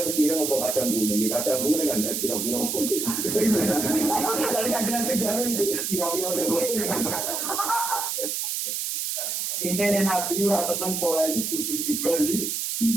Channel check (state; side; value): noise; right; hiss, 2 dB below the sound